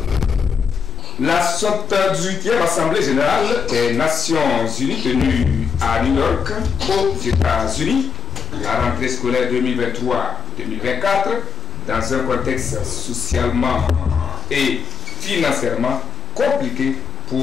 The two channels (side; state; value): right; quieter; 5.2 dB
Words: La 78e Assemblée Générale des Nations Unies tenue à New York, aux États-Unis, la rentrée scolaire 2023-2024, dans un contexte socialement et financièrement compliqué